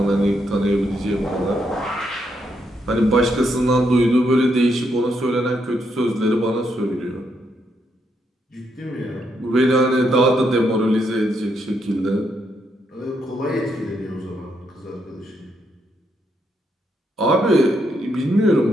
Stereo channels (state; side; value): normal; both; correlation 0.78